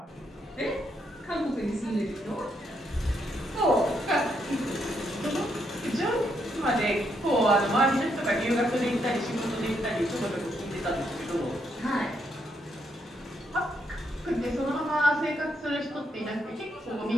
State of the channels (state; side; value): normal; both; correlation 0.77